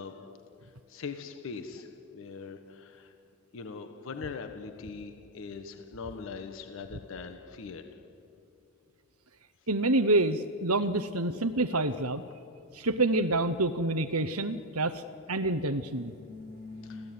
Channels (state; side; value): normal; both; correlation -0.02